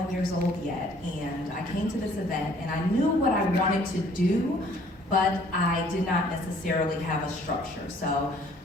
year old yet. And I came to this event, and I knew what I wanted to do, but I did not necessarily have a structure. So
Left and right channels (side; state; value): both; normal; correlation 0.58